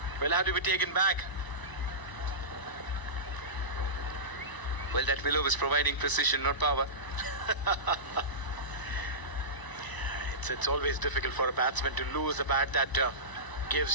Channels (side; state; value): right; late; 1.0 ms